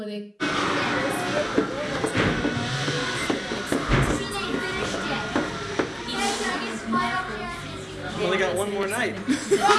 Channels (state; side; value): identical; both; correlation 1.00